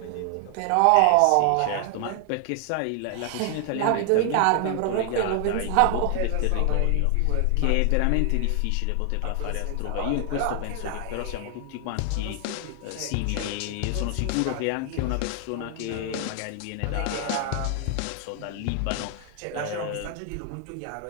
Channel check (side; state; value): both; different; correlation 0.00